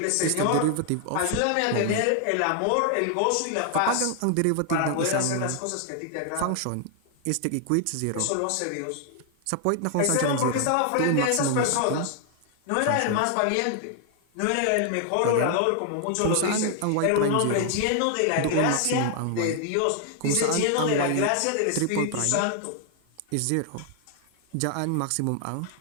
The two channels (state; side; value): different; both; correlation 0.00